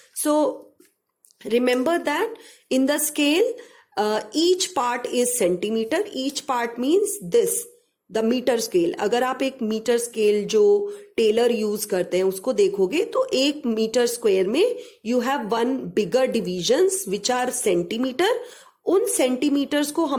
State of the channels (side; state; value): both; identical; correlation 1.00